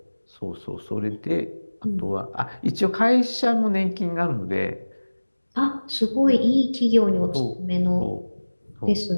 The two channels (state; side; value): inverted; both; correlation -1.00